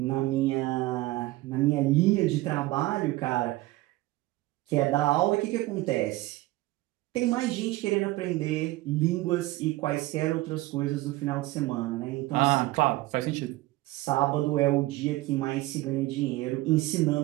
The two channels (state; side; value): quieter; left; 18.7 dB